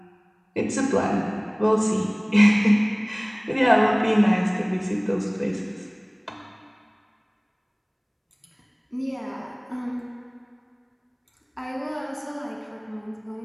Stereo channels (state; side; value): identical; both; correlation 1.00